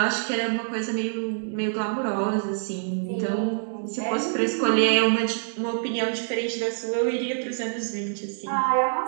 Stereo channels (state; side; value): silent; left; digital silence